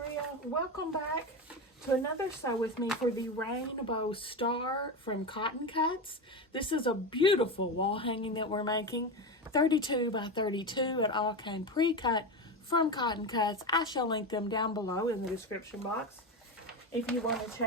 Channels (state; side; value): normal; both; correlation 0.19